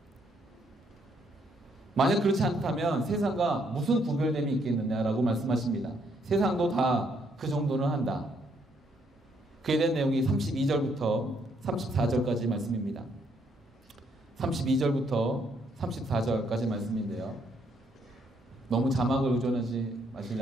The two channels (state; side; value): normal; both; correlation 0.71